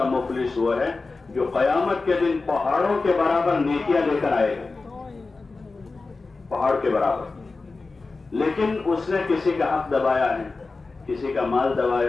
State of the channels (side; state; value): right; quieter; 3.8 dB